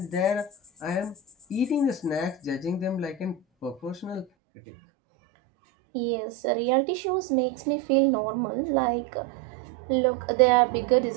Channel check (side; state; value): left; drops out; at 4.2 s